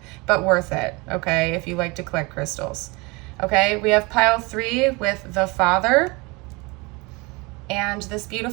but worth it, okay, if you like to collect crystals. Okay, we have pile 3 with the Father, and this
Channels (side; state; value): left; quieter; 26.3 dB